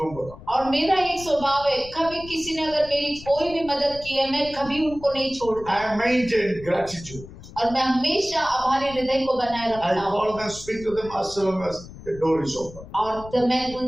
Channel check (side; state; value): left; noise; rumble, 16 dB below the sound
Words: that. और मेरा एक स्वभाव है कभी किसी ने अगर मेरी कोई भी मदद की है मैं कभी उनको नहीं छोड़ता I maintain gratitude. और मैं हमेशा आभारी हृदय को बनाए I रखता हूँ। call them, speak to them as long as the door is open. और तो मैं